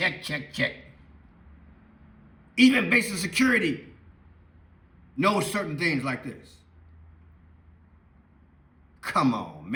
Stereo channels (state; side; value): identical; both; correlation 1.00